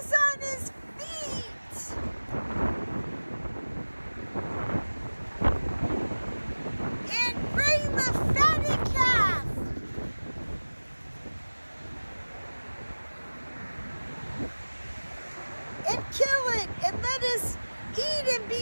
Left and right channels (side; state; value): both; inverted; correlation -1.00